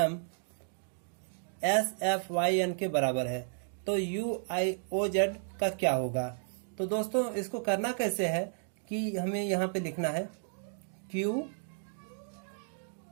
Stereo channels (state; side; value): silent; left; 56 dB below the other